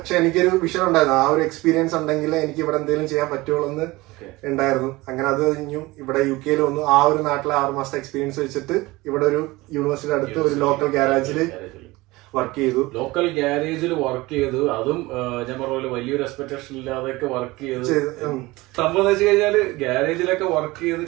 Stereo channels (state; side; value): quieter; left; 20.9 dB